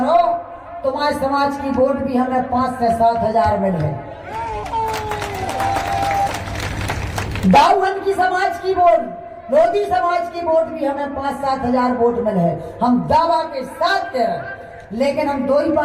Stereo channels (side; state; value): both; identical; correlation 1.00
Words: तुम्हारे समाज की वोट भी हमें 5 से 7,000 मिले। दाऊहन की समाज की वोट, लोधी समाज की वोट भी हमें 5-7,000 वोट मिले। हम दावा के साथ कह रहे, लेकिन हम दो ही